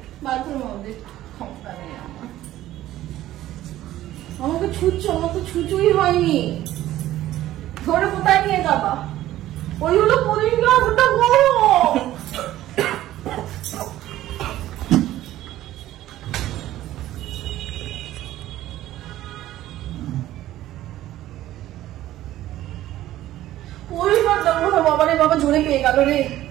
বাথরুমের মধ্যে ক্ষমতা নেই আমার। আমাকে ছুঁচ্ছ, আমার তো ছুঁচুই হয়নি। ধরে কোথায় নিয়ে যাবা? ওইগুলো পরিষ্কার ওটা করো। পরিষ্কার দেবো না বাবা রে, বাবা জোরে পেয়ে গেল রে।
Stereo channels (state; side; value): quieter; left; 14.2 dB